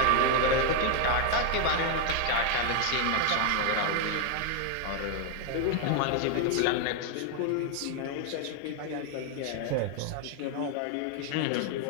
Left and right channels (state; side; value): different; both; correlation 0.01